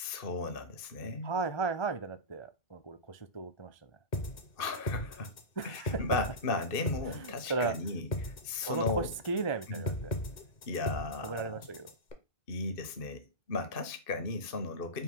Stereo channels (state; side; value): late; right; 2.5 ms